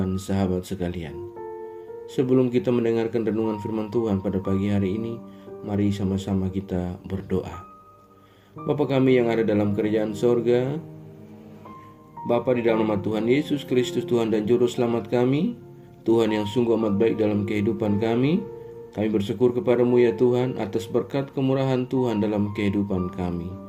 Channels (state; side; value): identical; both; correlation 1.00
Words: sahabat sekalian. Sebelum kita mendengarkan renungan firman Tuhan pada pagi hari ini, mari sama-sama kita berdoa. Bapa kami yang ada dalam kerajaan sorga, Bapa, di dalam nama Tuhan Yesus Kristus, Tuhan dan Juru Selamat kami, Tuhan yang sungguh amat baik dalam kehidupan kami bersyukur kepadamu ya Tuhan atas berkat kemurahan Tuhan dalam kehidupan kami.